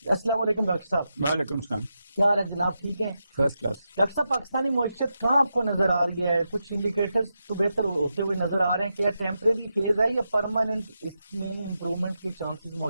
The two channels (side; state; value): both; inverted; correlation -0.87